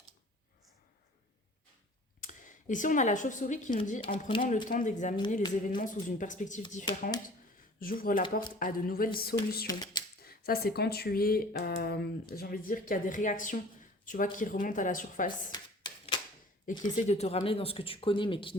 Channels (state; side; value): normal; both; correlation 0.47